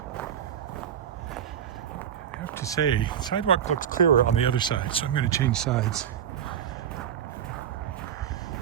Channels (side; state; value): left; quieter; 9.2 dB